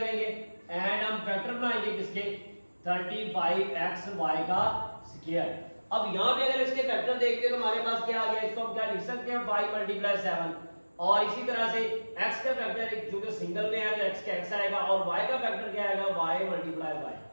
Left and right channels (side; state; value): both; inverted; correlation -1.00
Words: एंड हम फैक्टर बनाएंगे किसके, 35x y का स्क्वायर। अब यहाँ पे अगर इसके फैक्टर देखते हैं तो हमारे पास क्या आ गया, इसको हम क्या लिख सकते हैं 5 मल्टीप्लाई 7, और इसी तरह से x का फैक्टर जो कि सिंगल में है तो x का x आएगा और y का फैक्टर क्या आएगा, y मल्टीप्लाई y।